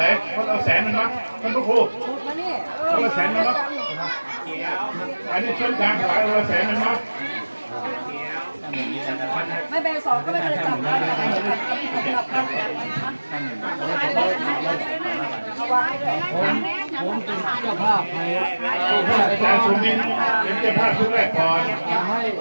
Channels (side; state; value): both; inverted; correlation -1.00